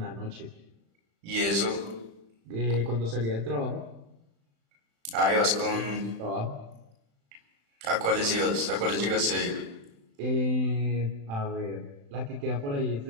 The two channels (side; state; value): left; late; 35 ms